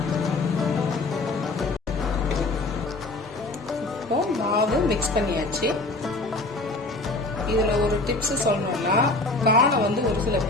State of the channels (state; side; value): quieter; right; 3.0 dB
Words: மாவு மிக்ஸ் பண்ணியாச்சு. இதுல ஒரு டிப்ஸ் சொல்லணும்னா, கார்னை வந்து ஒரு சில